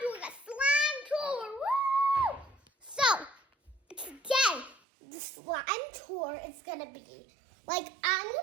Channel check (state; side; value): drops out; left; at 4.8 s